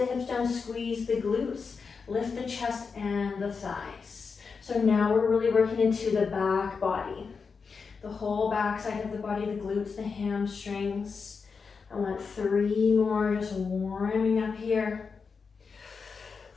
hips down, squeeze the glutes. Lift the chest and the thighs. So now we're really working into the back body. The whole back side of the body, the glutes, the hamstrings. I want 3 more, just warming up here.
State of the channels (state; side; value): quieter; right; 5.2 dB